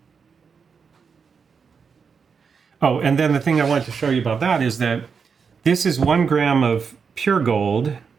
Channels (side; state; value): left; quieter; 5.9 dB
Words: Oh, and then the thing I wanted to show you about that is that this is 1 gram of pure gold.